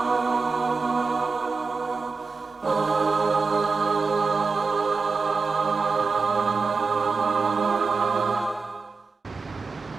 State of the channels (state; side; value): quieter; left; 4.5 dB